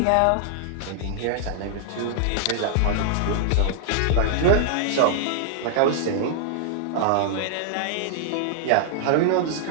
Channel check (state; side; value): different; both; correlation -0.01